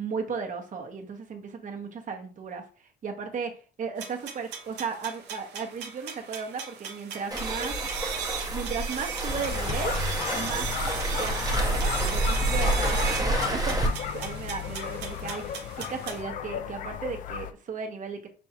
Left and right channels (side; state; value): both; normal; correlation 0.38